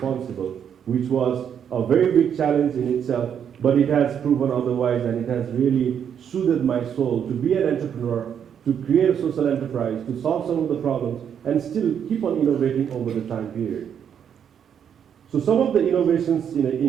which was a very big challenge in itself, but it has proven otherwise, and it has really soothed my soul to be an entrepreneur, to create a social enterprise, to solve some of the problems, and still keep on innovating over the time period. So some of the innovations in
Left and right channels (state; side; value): quieter; left; 8.3 dB